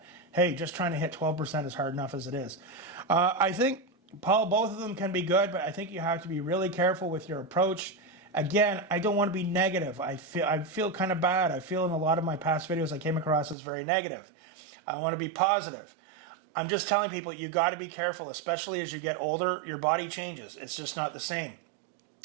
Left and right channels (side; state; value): left; drops out; at 13.6 s